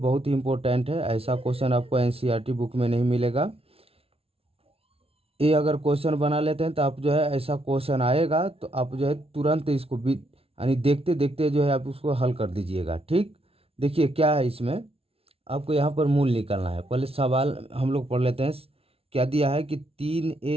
ही इम्पोर्टेंट है। ऐसा क्वेश्चन आपको एनसीईआरटी बुक में नहीं मिलेगा। ये अगर क्वेश्चन बना लेते हैं तो आप जो है ऐसा क्वेश्चन आएगा तो आप जो है तुरंत इसको भी यानी देखते देखते जो है आप उसको हल कर दीजिएगा। ठीक, देखिए क्या है इसमें। आपको यहाँ पर मूल निकालना है। पहले सवाल हम लोग पढ़ लेते हैं। क्या दिया है कि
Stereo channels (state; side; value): late; left; 0.28 ms